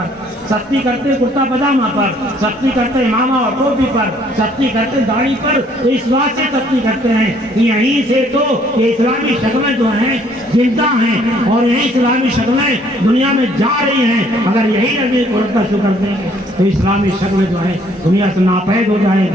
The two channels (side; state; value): both; normal; correlation 0.62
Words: سختی کرتے کرتا پاجامہ پر، سختی کرتے امامہ اور ٹوپی پر، سختی کرتے داڑھی پر، تو اس بات سے سختی کرتے ہیں کہ یہیں سے تو یہ اسلامی شکلیں جو ہیں زندہ ہیں، اور یہی اسلامی شکلیں دنیا میں جا رہی ہیں۔ اگر یہی نبی کو رد شکر دیں گے تو اسلامی شکلیں جو ہیں دنیا سے ناپید ہو جائیں